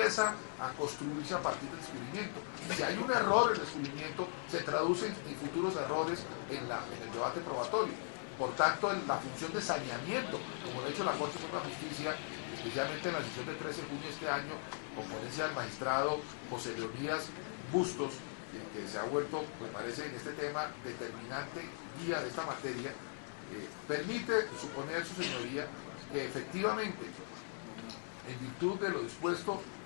a construirse a partir del descubrimiento. Si hay un error en el descubrimiento, se traduce en futuros errores en el debate probatorio. Por tanto, la función de saneamiento, como lo ha hecho la Corte Suprema de Justicia, especialmente en la sesión del 13 de junio de este año, con ponencia del magistrado José Leonidas Bustos, que se ha vuelto, me parece, en este tema determinante guía de esta materia, permite suponer, su señoría, que efectivamente, en virtud de lo dispuesto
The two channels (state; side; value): silent; right; digital silence